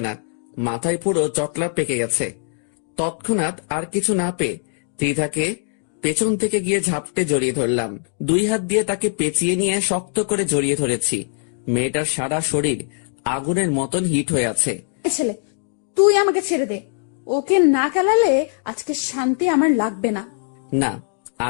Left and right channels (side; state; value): right; silent; 65 dB below the other